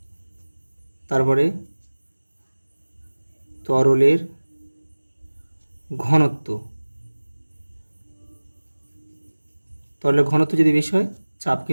তারপরে তরলের ঘনত্ব। তরলের ঘনত্ব যদি বেশি হয়, চাপ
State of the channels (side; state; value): both; inverted; correlation -1.00